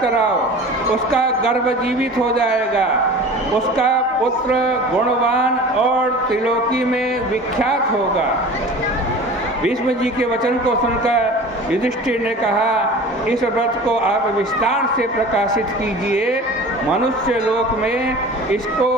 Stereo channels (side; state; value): both; normal; correlation 0.39